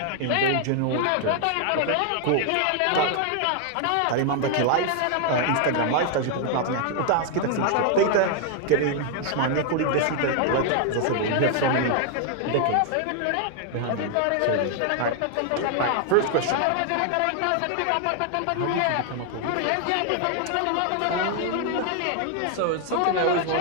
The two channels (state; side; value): different; both; correlation 0.00